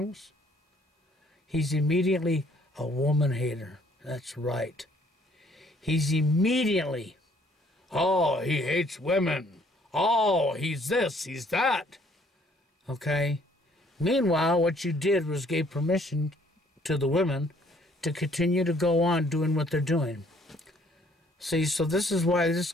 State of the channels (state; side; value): normal; both; correlation 0.62